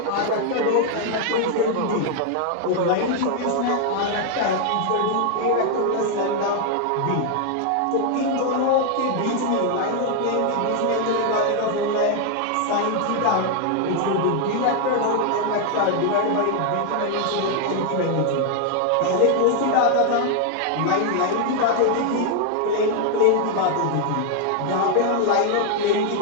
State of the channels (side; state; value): both; different; correlation 0.00